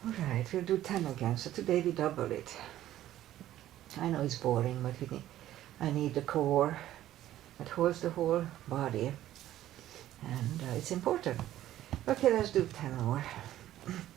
All right, we'll do 10 again. So today we double it. I know it's boring, but I need the core that holds the whole body, and it's important. Okay, let's do 10 more.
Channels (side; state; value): left; quieter; 13.3 dB